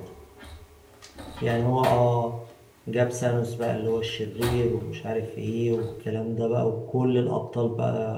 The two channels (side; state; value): both; identical; correlation 1.00